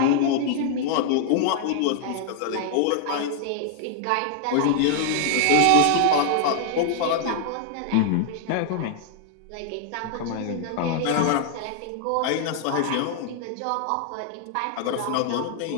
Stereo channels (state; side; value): different; both; correlation 0.00